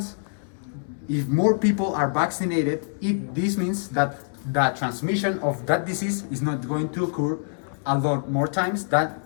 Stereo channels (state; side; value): silent; right; digital silence